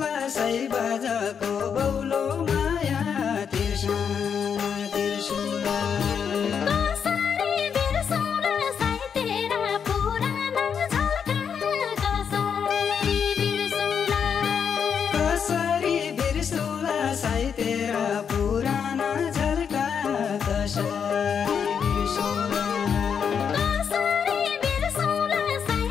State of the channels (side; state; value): right; quieter; 7.1 dB